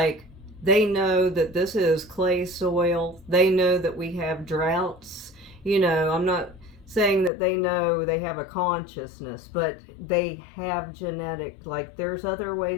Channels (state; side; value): drops out; right; at 7.3 s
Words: they know that this is clay soil. They know that we have droughts. I'm not saying that they know they have a consciousness, but they have genetic, like, there's other